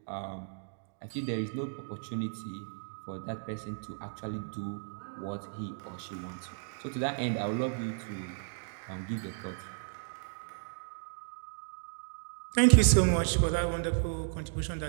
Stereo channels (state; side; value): silent; left; digital silence